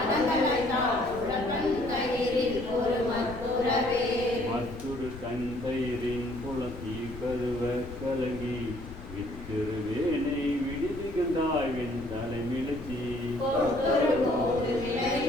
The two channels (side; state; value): left; noise; rumble, 13 dB below the sound